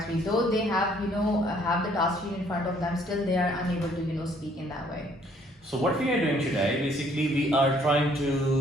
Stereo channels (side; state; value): both; normal; correlation 0.63